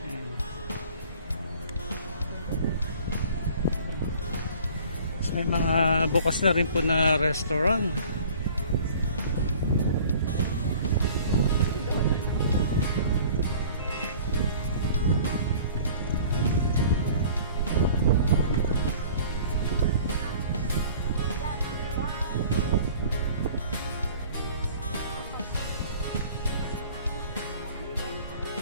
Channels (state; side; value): inverted; both; correlation -0.48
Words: Ayan. So, may mga bukas na rin po na restaurant.